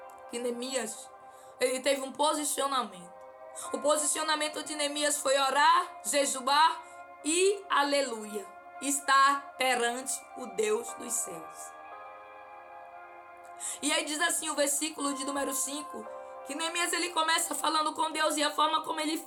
que Neemias, ele teve um posicionamento. O posicionamento de Neemias foi orar, jejuar e, aleluia, estar perante o Deus dos céus. E aí diz assim o versículo de número 5, que Neemias ele começa falando com Deus, e a forma como ele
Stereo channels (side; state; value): both; identical; correlation 1.00